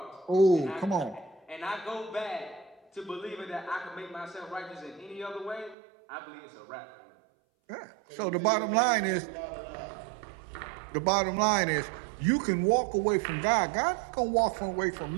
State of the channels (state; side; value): drops out; left; at 5.8 s